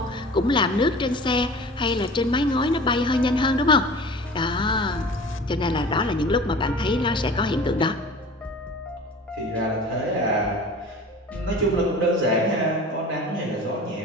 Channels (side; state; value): both; normal; correlation 0.40